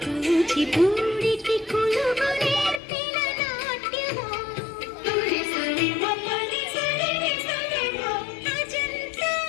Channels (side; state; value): right; drops out; at 2.8 s